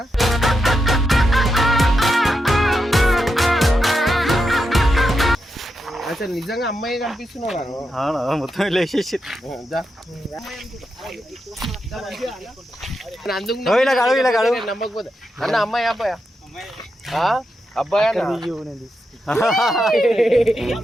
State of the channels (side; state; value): both; normal; correlation 0.86